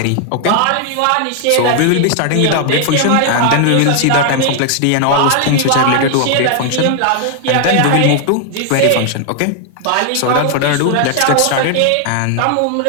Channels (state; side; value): different; both; correlation 0.00